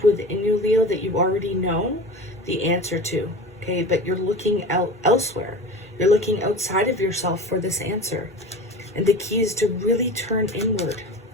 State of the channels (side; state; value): both; normal; correlation 0.34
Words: within you, Leo, that you already know the answer to, okay? But you're looking out elsewhere. You're looking outside of yourself for this answer. And the key is to really turn inward